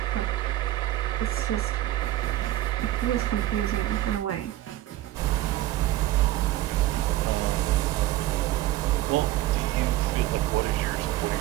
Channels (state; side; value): quieter; left; 15.3 dB